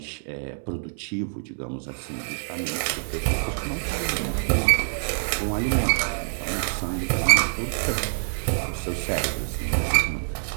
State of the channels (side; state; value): left; silent; 61 dB below the other